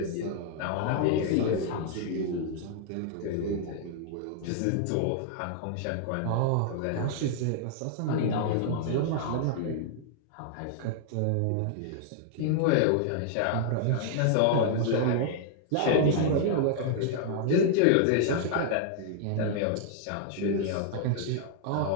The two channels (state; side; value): different; both; correlation -0.01